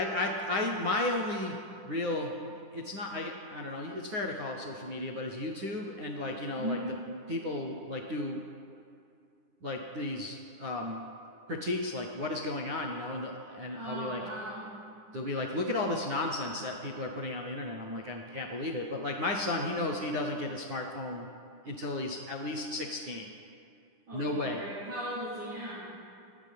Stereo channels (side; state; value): left; late; 10 ms